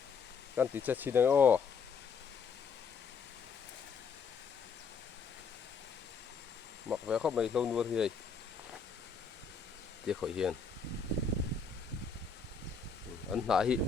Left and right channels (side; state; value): right; quieter; 5.6 dB